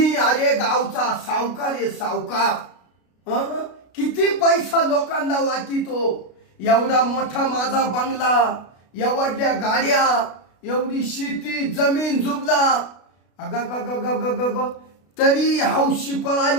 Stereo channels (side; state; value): right; late; 33 ms